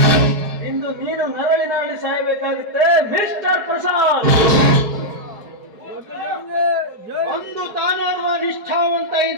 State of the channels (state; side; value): late; left; 4.9 ms